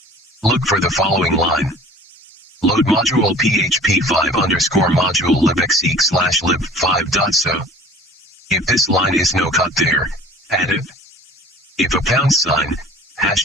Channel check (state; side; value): normal; both; correlation 0.46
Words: Look for the following line. Load module php5_module libxeq/lib5.so. If this line is no there, add it. If a £,